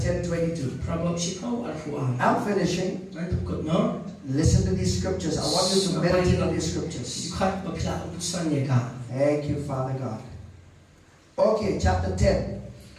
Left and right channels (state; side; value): identical; both; correlation 1.00